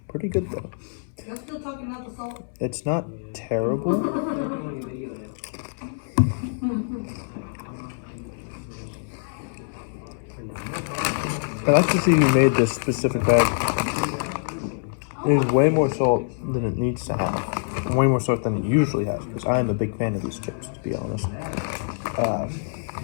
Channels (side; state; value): right; silent; 62 dB below the other